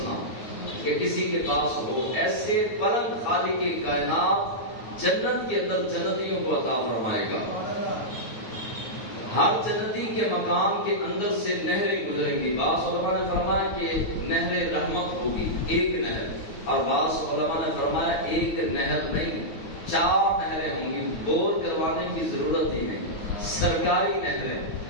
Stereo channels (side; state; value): right; late; 9.3 ms